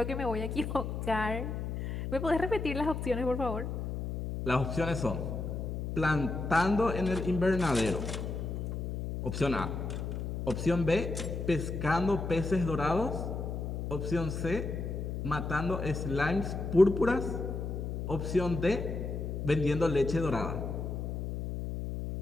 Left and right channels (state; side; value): noise; left; hum, 4 dB below the sound